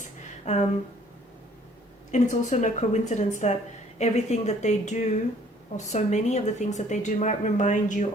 And it's also no coincidence that everything that they do, or so many of the things that they do, might remind you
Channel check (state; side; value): normal; both; correlation 0.58